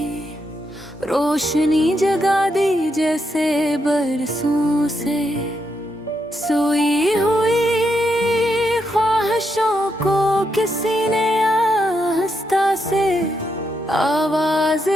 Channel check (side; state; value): both; normal; correlation 0.81